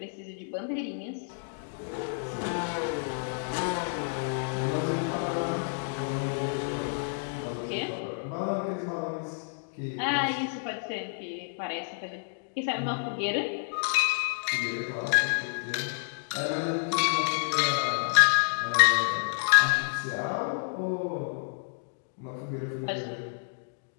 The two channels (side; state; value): right; silent; digital silence